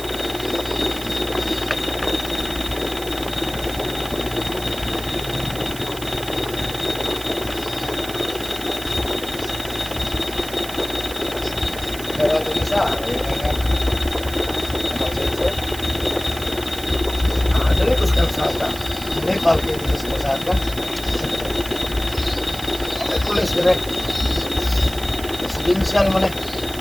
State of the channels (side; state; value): right; noise; hiss, 13 dB below the sound